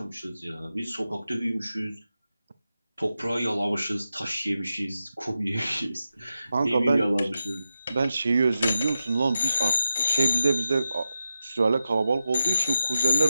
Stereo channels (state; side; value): inverted; both; correlation -0.90